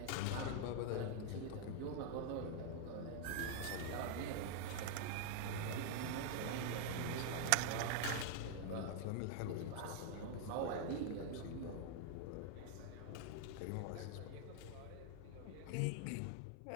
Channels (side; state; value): both; different; correlation 0.00